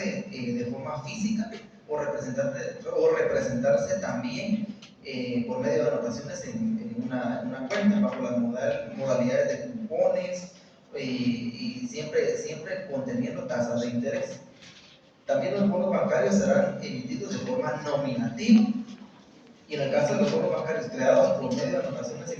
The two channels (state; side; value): identical; both; correlation 1.00